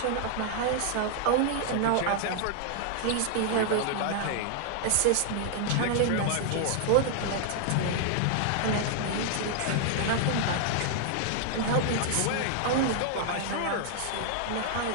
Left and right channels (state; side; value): different; both; correlation 0.00